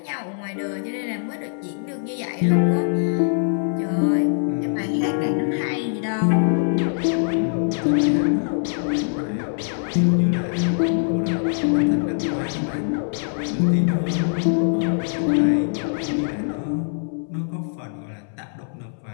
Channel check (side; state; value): right; silent; 60 dB below the other